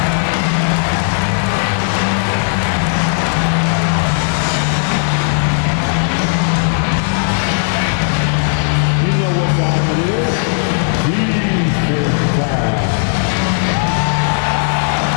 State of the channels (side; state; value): right; silent; digital silence